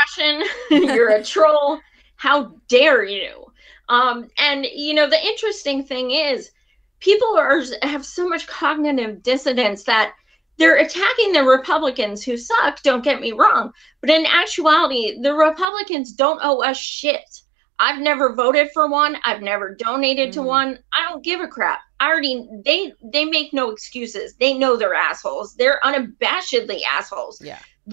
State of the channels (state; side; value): drops out; left; at 15.7 s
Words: You're a troll. How dare you? And, the interesting thing is, people have so much cognitive dissonance that they're attacking the Republicans who suck, don't get me wrong. But in actuality, the Republicans don't owe us shit. I've never voted for one. I've never donated to one. I don't give a crap. They make no excuses. They know they're assholes. They're unabashedly assholes. Yeah.